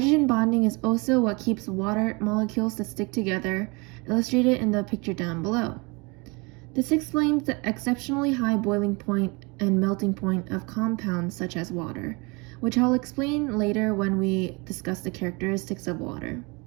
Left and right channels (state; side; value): quieter; left; 28.2 dB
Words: bonding is also what keeps water molecules to stick together, illustrated in the picture down below. This explains the exceptionally high boiling point and melting point of compounds such as water, which I'll explain later when we discuss the characteristics of water.